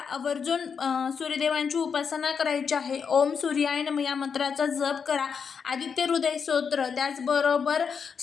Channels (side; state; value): right; quieter; 6.3 dB